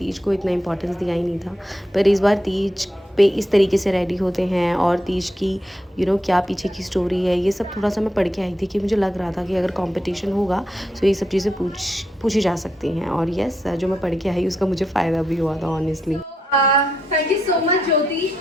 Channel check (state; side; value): normal; both; correlation 0.82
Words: को इतना इम्पोर्टेंस दिया ही नहीं था, पर इस बार तीज पे इस तरीके से रेडी होते हैं और तीज की क्या पीछे की स्टोरी है, ये सब थोड़ा सा मैं पढ़ के आई थी कि मुझे लग रहा था कि अगर कंपटीशन होगा तो ये सब चीज़ें पूछी जा सकती हैं. और यस, जो मैं पढ़ के आई उसका मुझे फ़ायदा भी हुआ था honestly. Thank you so much, Jyoti,